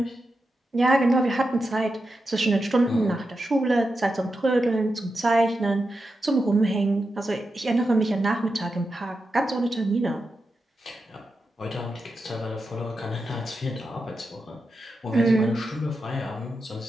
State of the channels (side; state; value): both; normal; correlation 0.89